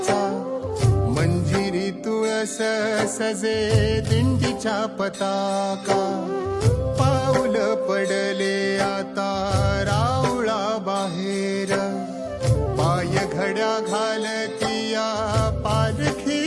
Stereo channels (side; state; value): both; identical; correlation 1.00